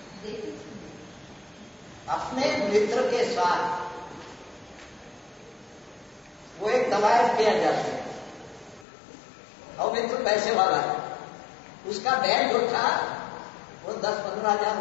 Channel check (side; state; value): right; drops out; at 8.8 s